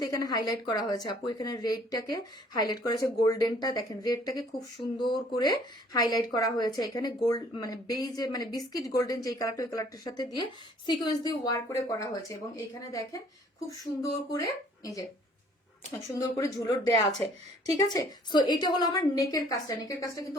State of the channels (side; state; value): both; normal; correlation 0.58